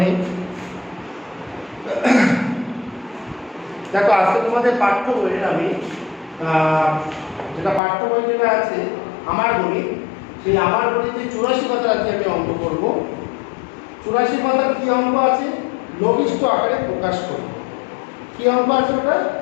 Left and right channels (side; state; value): right; drops out; at 7.8 s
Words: দেখো আজকে তোমাদের পাঠ্য বইয়ের আমি যেটা পাঠ্য বই যেটা আছে আমার গণিত, সেই আমার গণিতে 84 পাতার আজকে আমি অঙ্ক করব। 84 পাতার কি অঙ্ক আছে? লঘিষ্ঠ আকারে প্রকাশ করব। কি অঙ্ক আছে ওটা?